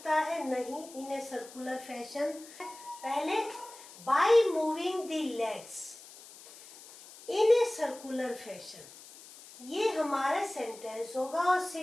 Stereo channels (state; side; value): noise; left; hiss, 18 dB below the sound